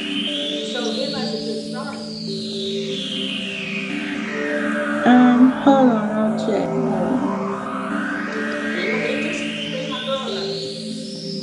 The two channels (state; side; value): identical; both; correlation 1.00